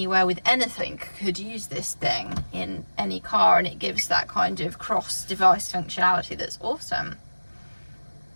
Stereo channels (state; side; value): inverted; both; correlation -1.00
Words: with anything could use this thing in any car, and it gives that kind of cross device functionality that's awesome.